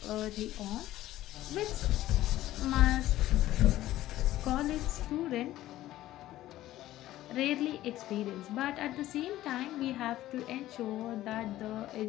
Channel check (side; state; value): right; quieter; 14.7 dB